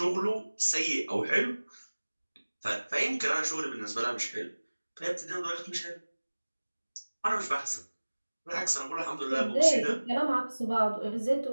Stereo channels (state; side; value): inverted; both; correlation -1.00